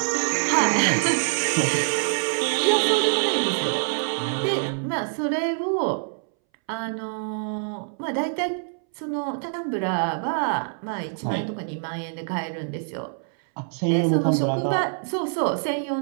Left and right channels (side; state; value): left; silent; 62 dB below the other